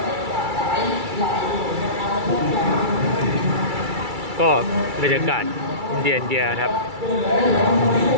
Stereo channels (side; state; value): left; late; 2.3 ms